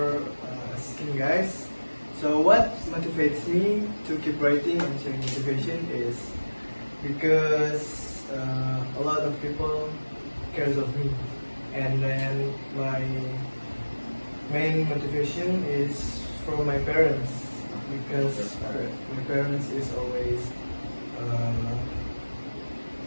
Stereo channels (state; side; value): inverted; both; correlation -1.00